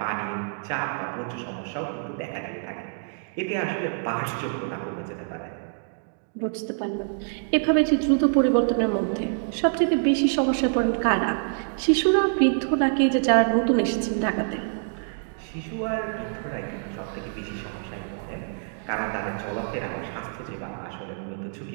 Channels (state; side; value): silent; left; digital silence